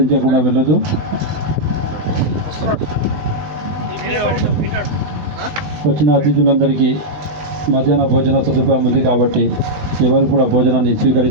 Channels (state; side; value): late; left; 20 ms